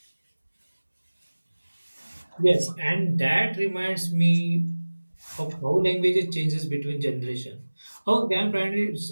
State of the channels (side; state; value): both; inverted; correlation -1.00